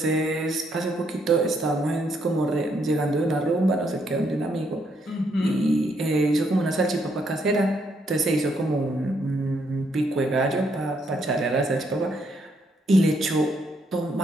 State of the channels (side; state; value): both; normal; correlation 0.74